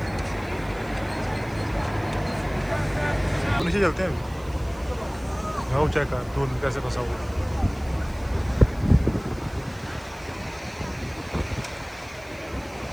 नीचे चलते हैं। वो चेक कर दूर कैसे फंसा हुआ।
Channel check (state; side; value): noise; right; hiss, 25 dB below the sound